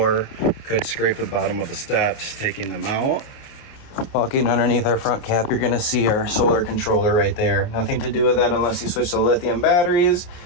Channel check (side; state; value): right; late; 28 ms